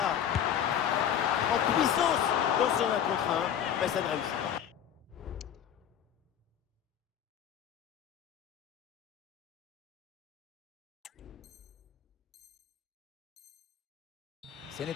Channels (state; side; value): quieter; right; 9.4 dB